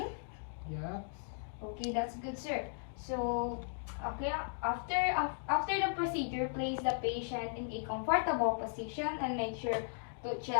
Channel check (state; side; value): silent; right; digital silence